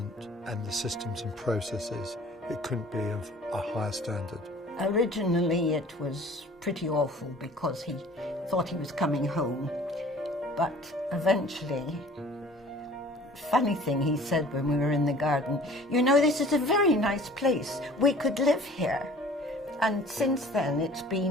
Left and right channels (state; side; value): normal; both; correlation 0.49